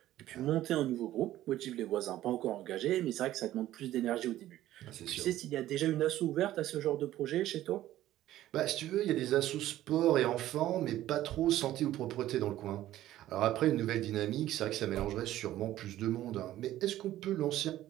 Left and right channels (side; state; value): left; quieter; 13.9 dB